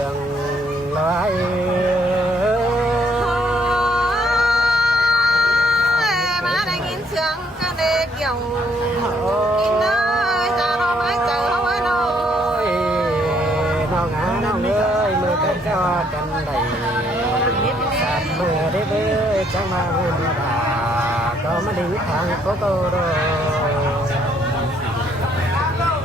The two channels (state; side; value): normal; both; correlation 0.68